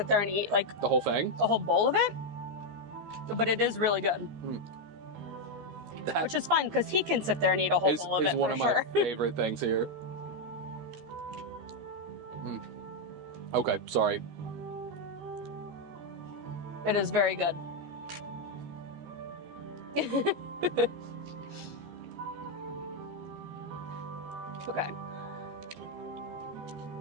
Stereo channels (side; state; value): left; late; 13 ms